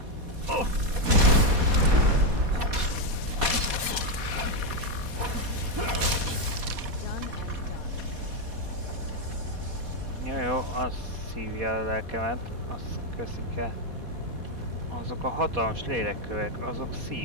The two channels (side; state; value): left; late; 4.2 ms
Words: Jó, az szívja a lelkemet, azt köszik el. Azok a hatalmas lélekkövek, azok